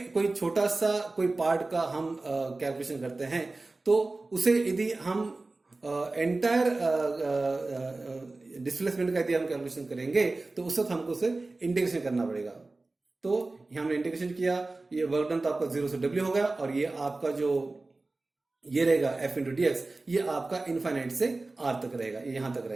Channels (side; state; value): left; quieter; 3.3 dB